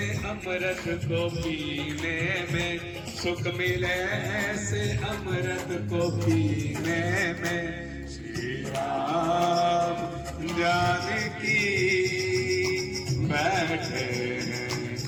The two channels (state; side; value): identical; both; correlation 1.00